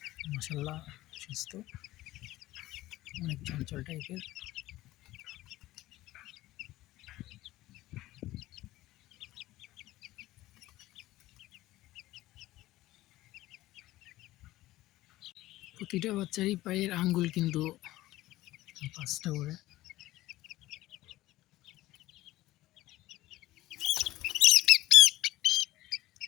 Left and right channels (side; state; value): right; quieter; 16.7 dB